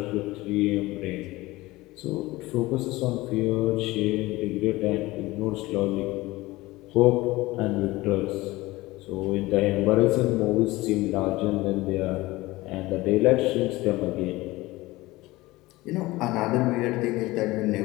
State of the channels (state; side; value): quieter; right; 19.6 dB